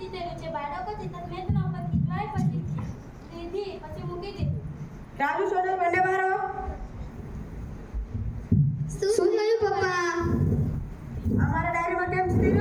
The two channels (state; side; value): identical; both; correlation 1.00